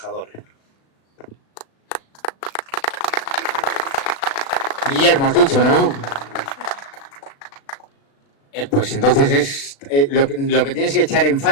Guillermo, has dicho, ¿no? Pues entonces lo que tienes que echar en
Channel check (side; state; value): right; late; 36 ms